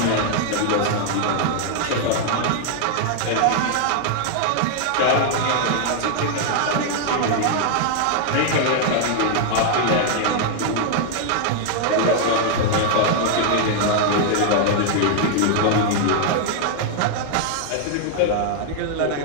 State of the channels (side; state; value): both; different; correlation 0.00